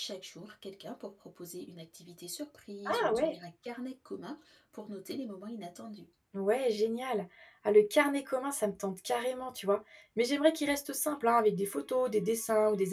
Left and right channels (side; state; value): both; identical; correlation 1.00